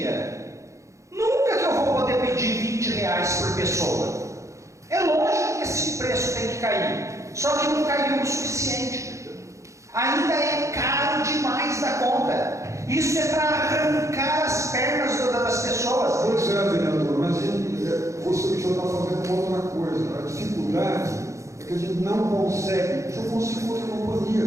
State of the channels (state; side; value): late; left; 0.15 ms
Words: nunca que eu vou poder pedir R$20 por pessoa. É lógico que esse preço tem que cair, só que não caiu o suficiente. Ainda é caro demais da conta. Isso é para arrancar as pernas